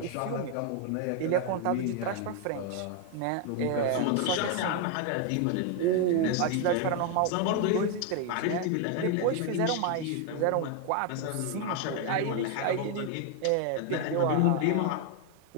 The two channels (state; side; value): different; both; correlation 0.01